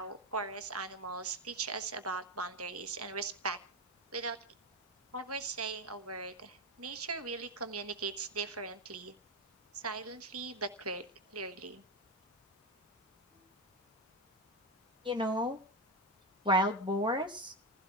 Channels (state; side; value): normal; both; correlation 0.12